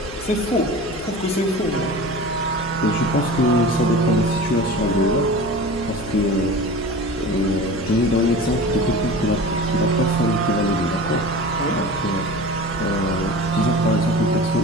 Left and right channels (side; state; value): left; noise; hum, 14 dB below the sound